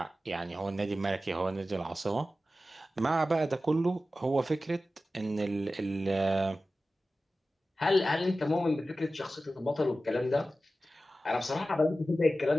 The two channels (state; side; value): normal; both; correlation 0.94